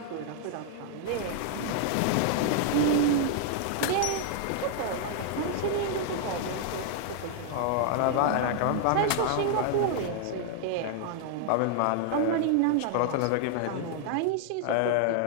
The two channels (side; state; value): both; different; correlation -0.01